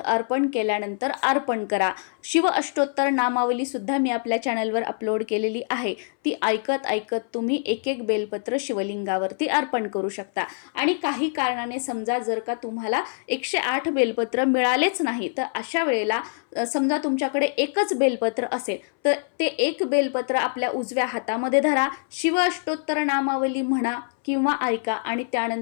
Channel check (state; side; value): silent; right; 62 dB below the other